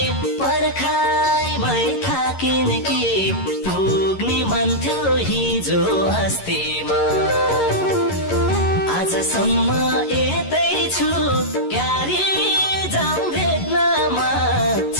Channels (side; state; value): right; late; 11 ms